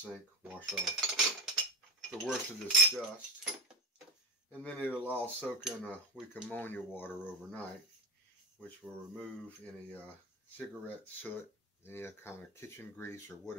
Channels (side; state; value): both; normal; correlation 0.17